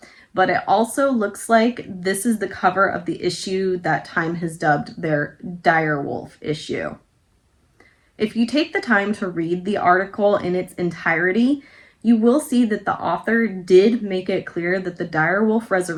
But it also looks like this is the cover of the issue that Time has dubbed their Dire Wolf issue. If you take the time to read the article in its entirety, you will see that the author did make it clear that the dire wolf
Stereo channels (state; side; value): identical; both; correlation 1.00